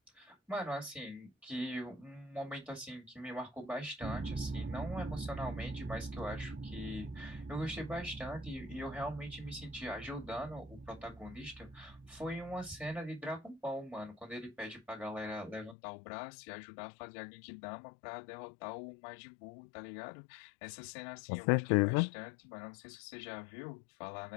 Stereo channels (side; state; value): right; drops out; at 15.8 s